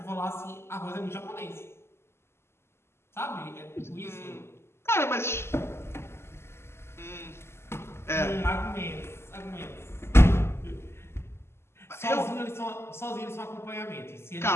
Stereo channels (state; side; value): late; right; 0.12 ms